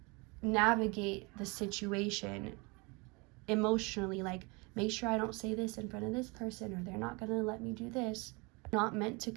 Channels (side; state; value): left; quieter; 28.1 dB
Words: navigate the situation emotionally, like make sure I don't say this in front of this person, or they're not going to let me do this. Not meant to